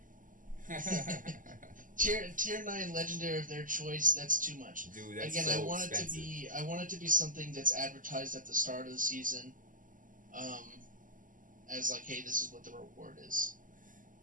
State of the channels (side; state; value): left; late; 0.38 ms